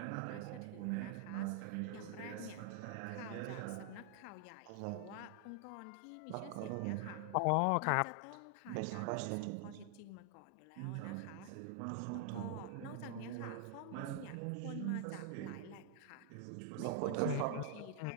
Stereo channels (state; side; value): different; both; correlation -0.01